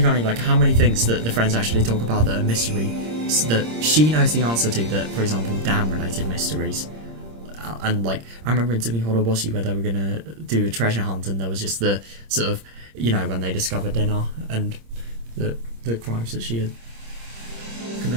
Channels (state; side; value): late; left; 26 ms